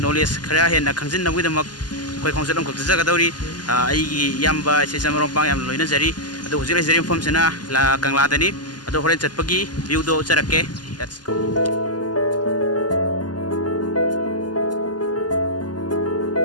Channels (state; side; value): late; right; 0.70 ms